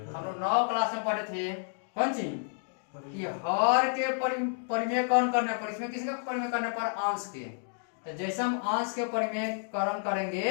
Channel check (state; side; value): silent; right; digital silence